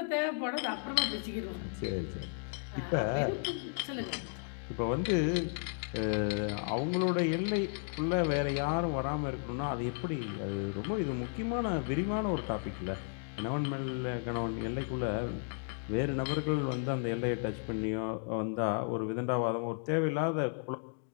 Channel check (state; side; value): silent; right; 55 dB below the other